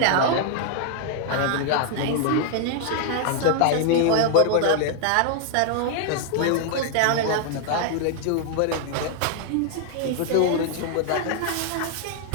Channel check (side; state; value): both; different; correlation 0.00